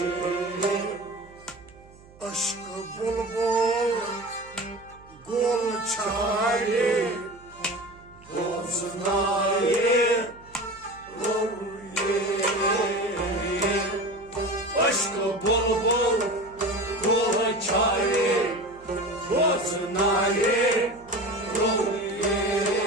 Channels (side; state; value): right; noise; hum, 24 dB below the sound